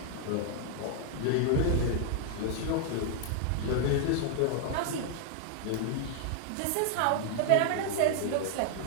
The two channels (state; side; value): different; both; correlation 0.00